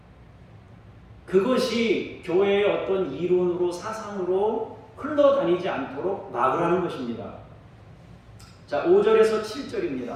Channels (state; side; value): identical; both; correlation 1.00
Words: 그것이 교회의 어떤 이론으로 사상으로 흘러다니지 않도록 막으라는 것입니다. 자, 5절에서